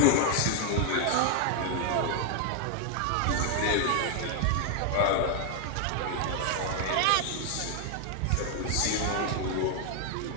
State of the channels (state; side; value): different; both; correlation 0.00